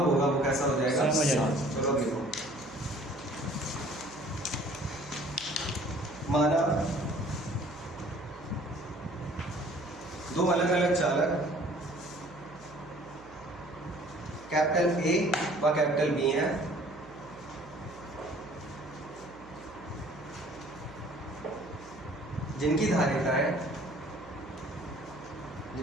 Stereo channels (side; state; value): right; noise; hum, 22 dB below the sound